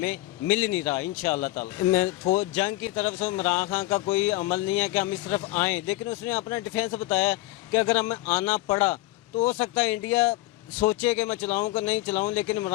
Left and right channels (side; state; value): right; quieter; 18.4 dB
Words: مل نہیں رہا انشاءاللہ تعالی. میں جنگ کی طرف سے عمران خان کا کوئی عمل نہیں ہے کہ ہم اس طرف آئیں, لیکن اس نے اپنا ڈیفینس بتایا کہ اگر ہمیں آنا پڑا تو ہو سکتا ہے انڈیا سوچے کہ میں چلاؤں کہ نہیں چلاؤں, لیکن